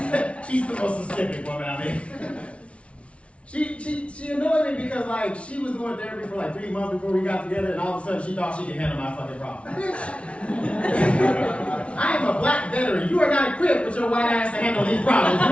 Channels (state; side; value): late; right; 0.061 ms